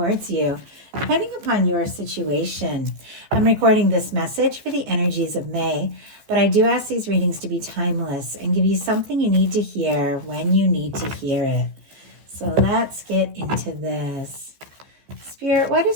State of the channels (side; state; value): left; late; 14 ms